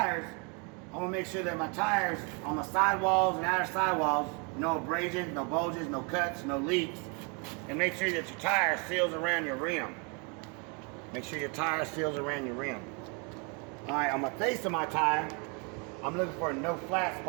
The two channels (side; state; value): left; quieter; 34.0 dB